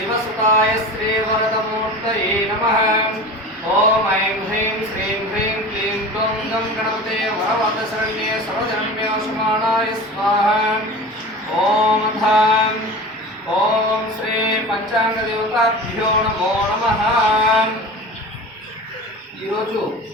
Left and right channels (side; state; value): both; normal; correlation 0.34